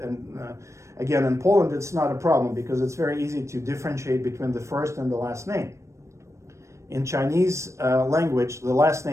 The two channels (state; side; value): late; left; 0.14 ms